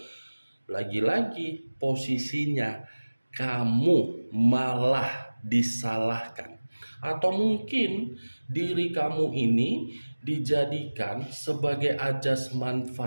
lagi-lagi posisinya kamu malah disalahkan. Atau mungkin diri kamu ini dijadikan sebagai ajas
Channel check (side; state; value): both; inverted; correlation -1.00